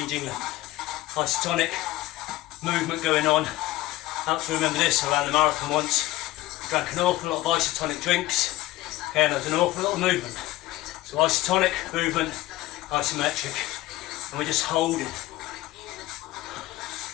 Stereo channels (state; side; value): quieter; right; 17.1 dB